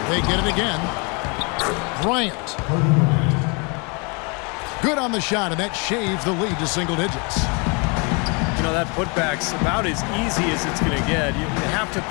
They get it again. Bryant. Good on the shot, and that shaves the lead to single digits. You know, that putback's about as easy as it's going to get. You have to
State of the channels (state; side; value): quieter; right; 32.2 dB